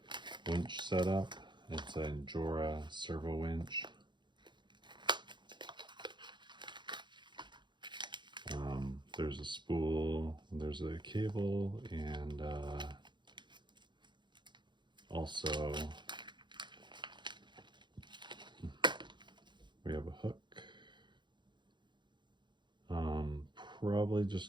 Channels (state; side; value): late; left; 0.22 ms